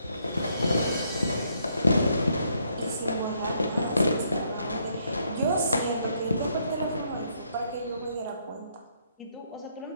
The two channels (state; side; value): inverted; both; correlation -0.72